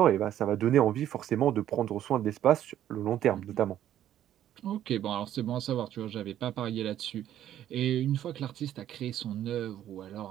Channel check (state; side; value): quieter; left; 11.5 dB